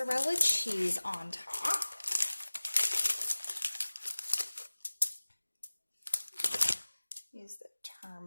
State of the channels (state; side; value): inverted; both; correlation -1.00